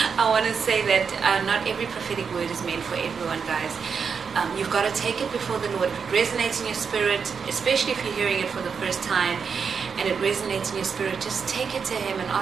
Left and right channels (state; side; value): quieter; left; 6.1 dB